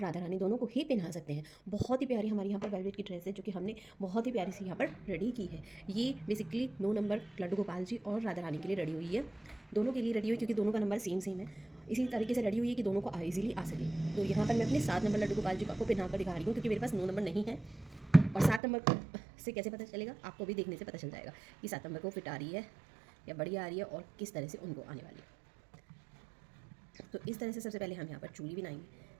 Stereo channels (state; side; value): drops out; left; at 18.6 s